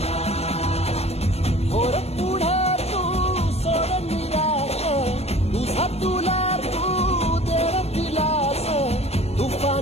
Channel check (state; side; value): late; right; 0.30 ms